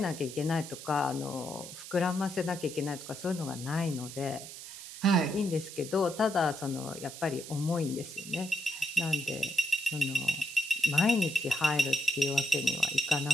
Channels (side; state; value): right; noise; hiss, 12 dB below the sound